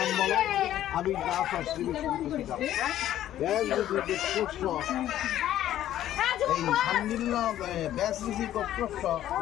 বলো? আবির দাস শ্রী বিষ্ণু এই শাণ্ডিল্য ব্যাস ঋষি গোত্রস্য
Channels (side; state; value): right; quieter; 12.4 dB